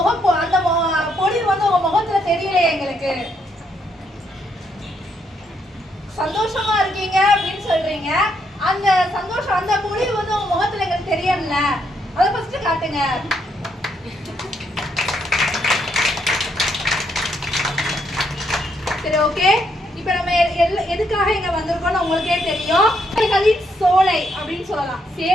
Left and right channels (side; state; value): both; normal; correlation 0.75